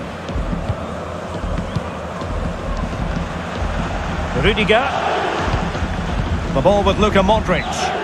Rudiger. The ball with Luka Modric.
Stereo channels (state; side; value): identical; both; correlation 1.00